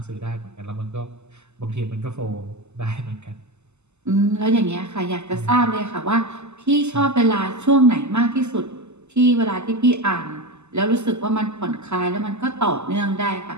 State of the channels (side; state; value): left; late; 0.82 ms